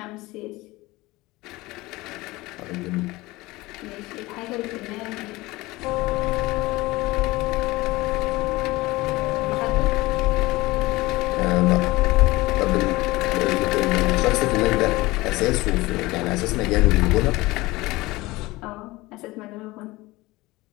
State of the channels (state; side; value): quieter; right; 20.5 dB